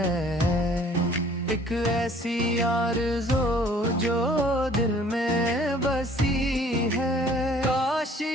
ایک ایسی آرزو جو دل میں بسی ہے، کاش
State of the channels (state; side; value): normal; both; correlation 0.55